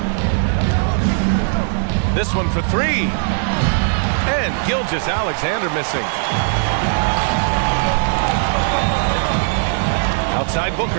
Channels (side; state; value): left; silent; 65 dB below the other